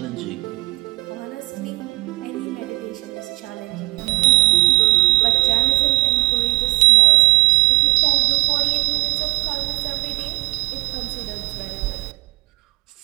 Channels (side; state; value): left; quieter; 24.2 dB